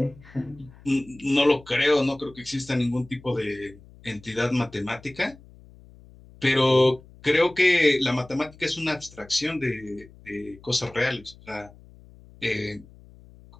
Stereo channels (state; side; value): noise; left; hum, 23 dB below the sound